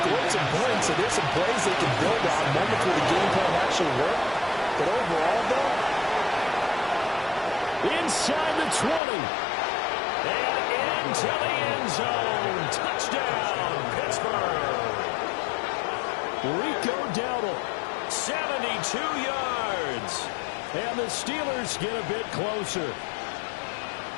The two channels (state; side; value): drops out; right; at 9.0 s